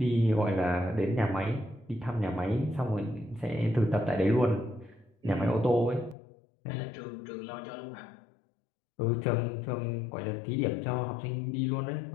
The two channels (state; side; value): drops out; right; at 6.2 s